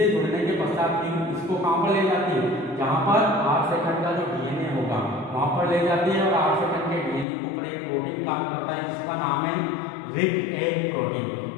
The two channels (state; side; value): drops out; right; at 7.2 s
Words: जुड़ने के पश्चात इसको कहाँ पर ले जाती है, जहाँ पर 8 सेकंड का जो डीएनए होगा वहाँ पर ले जाती है और 8 सेकंड के डीएनए के ऊपर एक प्रोटीन काम करता है जिसका नाम है रिग ए प्रोटीन।